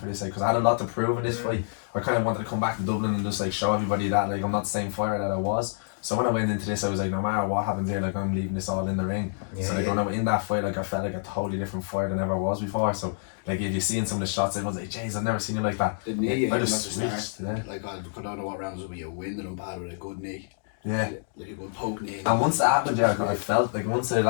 this, like, because I had a lot to prove in this fight. I kind of wanted to come back to Dublin and just like show everybody that like I'm not the same fighter that I was. So when I went into this, I was like, no matter what happens here, like I'm leaving this all in the ring. So like when I went in that fight, like I felt like a totally different fighter than I ever was before. So like if you seen some of the shots, I was like, jeez, I've never seen you like that. The knee, I just switched. Yeah. Like I don't know what rounds will be a win and bad with a good knee. Yeah. Like a good poke knee. And once that happened, yeah, I felt like once I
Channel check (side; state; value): right; silent; digital silence